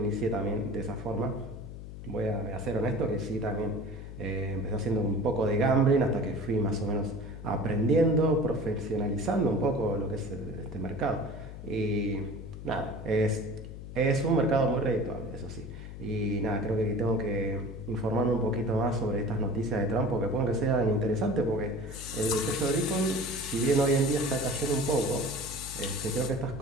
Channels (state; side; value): noise; left; hum, 11 dB below the sound